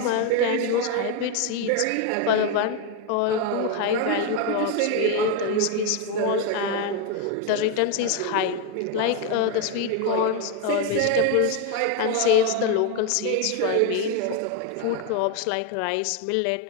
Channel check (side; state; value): both; different; correlation 0.02